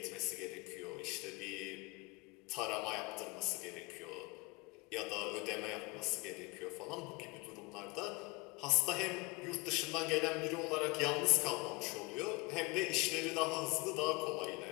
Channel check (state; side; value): quieter; right; 26.0 dB